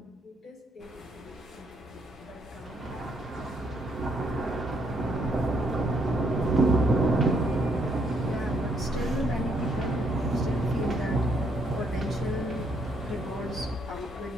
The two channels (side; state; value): both; normal; correlation 0.71